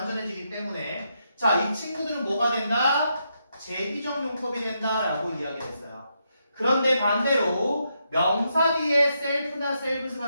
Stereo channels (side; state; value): both; inverted; correlation -0.81